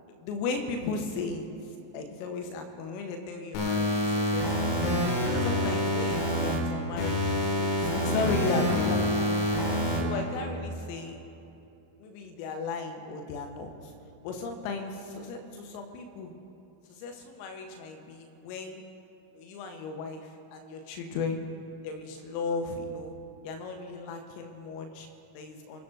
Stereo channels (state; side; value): late; right; 38 ms